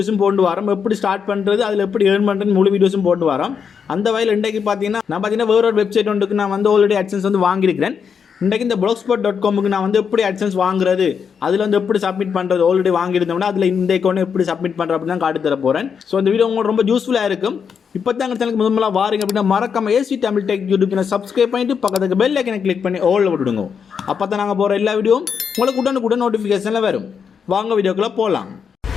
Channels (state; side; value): quieter; right; 6.7 dB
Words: போட்டு வரோம். எப்படி ஸ்டார்ட் பண்ணுறது, அதில் எப்படி ஏர்ன் பண்ணுறது முழு வீடியோஸும் போட்டு வரோம். அந்த வகையில் இன்றைக்கு பார்த்தீங்கன்னா வேற ஒரு வெப்சைட் ஒன்றுக்கு நான் ஆல்ரெடி AdSense வாங்கியிருக்கிறேன். இன்றைக்கு இந்த blogspot.comக்கு நான் எப்படி AdSense வாங்குறது, அதில் எப்படி சப்மிட் பண்ணுறது ஆல்ரெடி வாங்கியிருந்தோம்னா அதில் இந்த அக்கௌண்ட் எப்படி சப்மிட் பண்ணுறது அப்படின்னு தான் காட்டி தர போகிறேன். ஸோ இந்த வீடியோ உங்களுக்கு ரொம்ப யூஸ்ஃபுல்லாக இருக்கும். இப்போ தான் எங்கள் சேனலுக்கு முதல்ல வாரீங்க அப்படின்னா மறக்காம AC Tamil tech YouTube channel subscribe பண்ணிட்டு பக்கத்துக்கு பெல் ஐக்கனை கிளிக் பண்ணி ஆல்ல விட்டுடுங்க. அப்போ தான் நாங்கள் போகிற எல்லா வீடியோவும் உங்களுக்கு உடனுக்குடன் நோட்டிஃபிகேஷனில் வரும். வாங்க வீடியோக்குள்ளே போகலாம்.